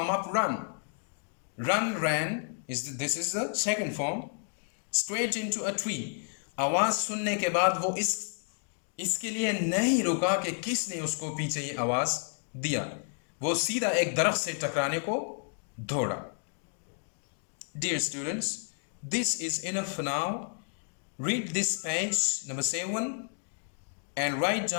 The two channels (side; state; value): right; silent; 57 dB below the other